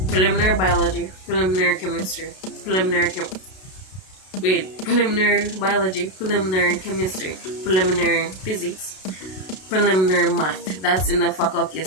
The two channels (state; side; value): late; right; 32 ms